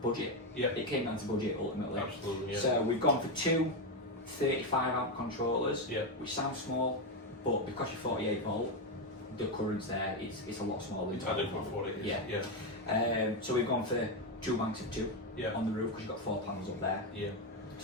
Yeah. It came down to budget ultimately. Absolutely, yeah. So we've gone for two 35 amp controllers, which sounds small, but because you're 48 volt, the current's there, it's a lot smaller. It's adequate for what it is. Yeah. So we've gone for 2 banks of 2 on the roof because you've got 4 panels up there. Yeah.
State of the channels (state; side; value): normal; both; correlation 0.08